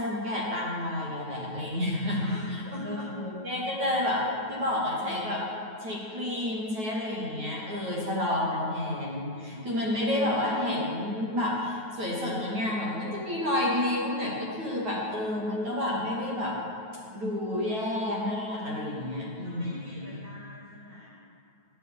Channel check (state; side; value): late; left; 9.2 ms